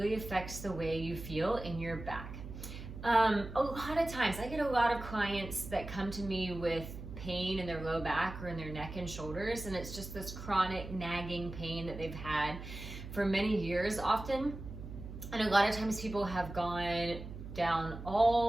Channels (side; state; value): right; noise; hum, 10 dB below the sound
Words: affects the way you feel in your back. A lot of times I get a lot of clients that come to me with pain in their low back or in their neck and shoulders, and it's just this chronic nagging pain that they've had for many years often. And a lot of times people have gone down